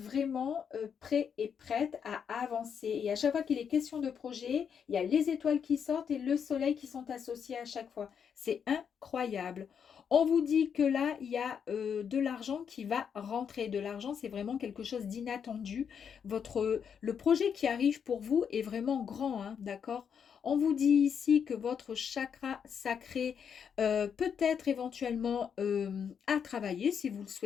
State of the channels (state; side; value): quieter; right; 7.3 dB